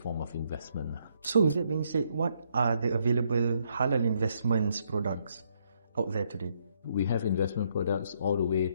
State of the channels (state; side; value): inverted; both; correlation -0.73